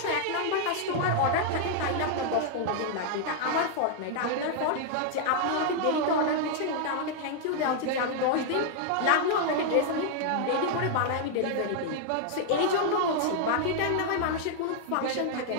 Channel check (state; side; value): different; both; correlation 0.00